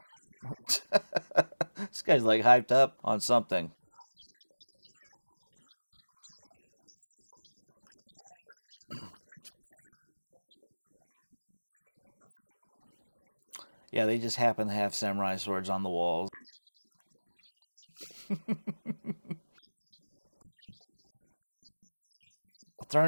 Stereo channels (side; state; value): both; inverted; correlation -1.00